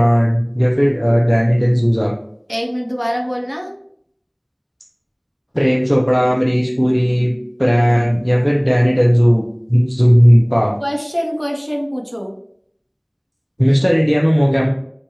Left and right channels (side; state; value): both; identical; correlation 1.00